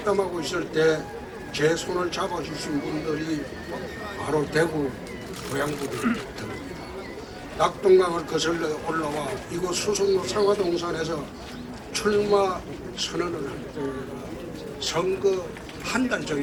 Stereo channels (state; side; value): identical; both; correlation 1.00